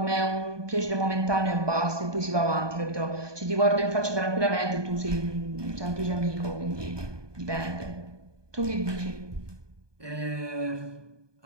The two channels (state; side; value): late; left; 1.2 ms